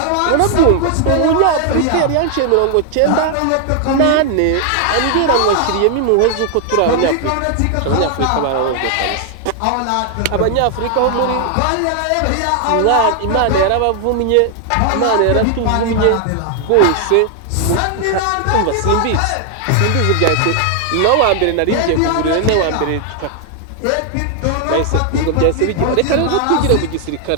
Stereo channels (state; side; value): different; both; correlation 0.00